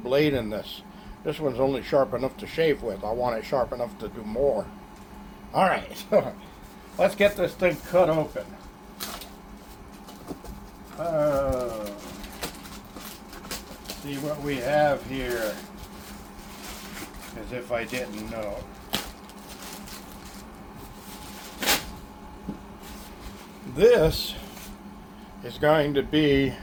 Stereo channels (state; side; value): identical; both; correlation 1.00